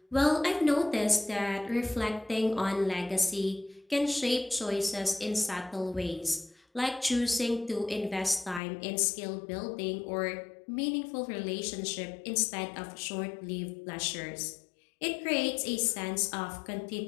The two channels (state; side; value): drops out; right; at 8.6 s